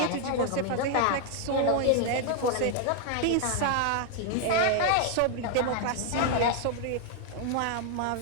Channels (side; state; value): both; different; correlation 0.00